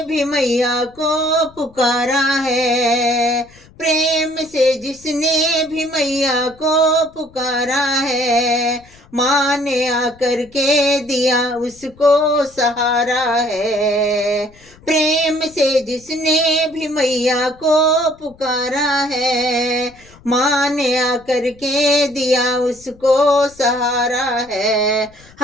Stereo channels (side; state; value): left; noise; rumble, 26 dB below the sound